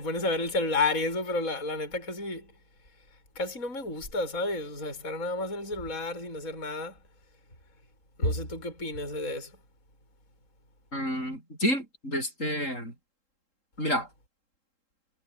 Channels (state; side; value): late; right; 3.8 ms